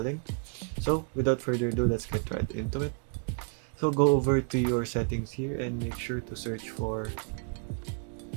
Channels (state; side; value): quieter; left; 37.7 dB